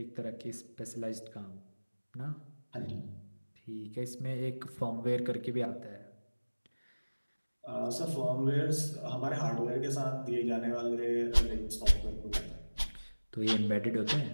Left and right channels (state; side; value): inverted; both; correlation -1.00